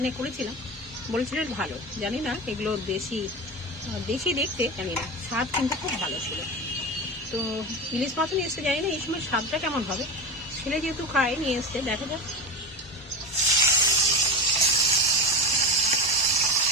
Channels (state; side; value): normal; both; correlation 0.22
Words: করেছিলাম, বলছিলেন ভালো। জানি না এগুলো দেশি দেখতে, জানি না, স্বাদ কিন্তু খুব ভালো ছিল। তো ইলিশ মাছও নিয়ে এসছে, জানি না এই সময় স্বাদটা কেমন হবে। ছেলে যেহেতু খায়, নিয়ে এসছে, দেখা যাক।